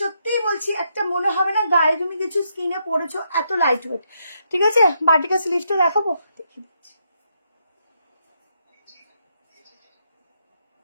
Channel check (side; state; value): both; inverted; correlation -0.78